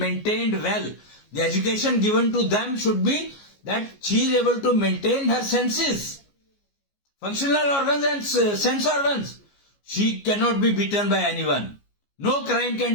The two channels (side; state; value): right; late; 14 ms